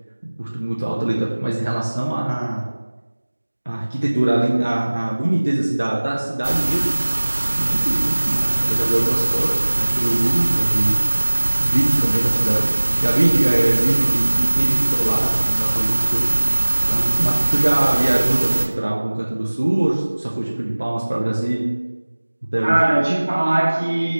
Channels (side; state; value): both; inverted; correlation -1.00